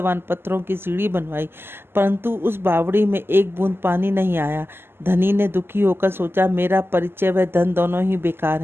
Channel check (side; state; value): left; late; 0.11 ms